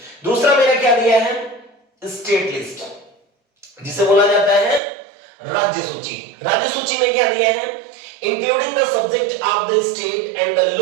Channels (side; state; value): left; drops out; at 4.8 s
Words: दूसरा मेरा क्या दिया है? स्टेट लिस्ट, जिसे बोला जाता है राज्य सूची। राज्य सूची में क्या दिया है? Including the subject of the state and the